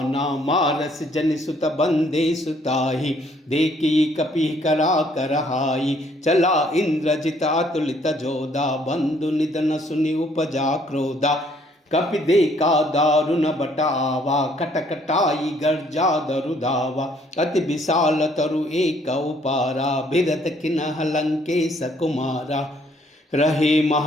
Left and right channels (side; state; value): both; normal; correlation 0.64